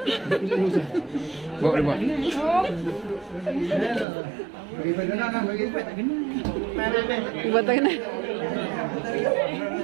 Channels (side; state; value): left; drops out; at 4.0 s